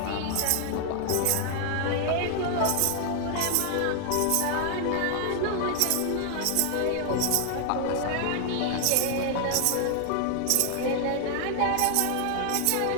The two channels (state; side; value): different; both; correlation 0.00